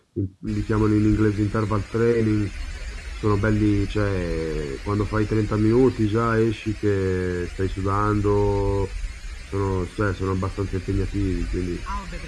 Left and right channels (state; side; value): identical; both; correlation 1.00